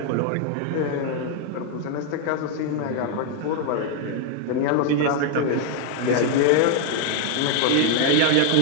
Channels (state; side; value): different; both; correlation 0.00